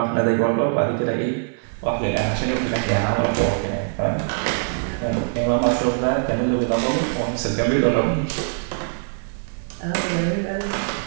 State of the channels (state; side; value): silent; left; 63 dB below the other